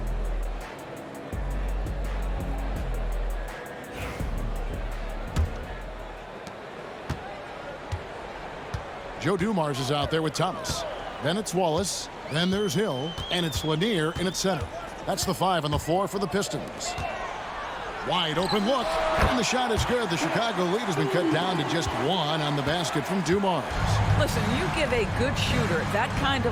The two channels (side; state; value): both; identical; correlation 1.00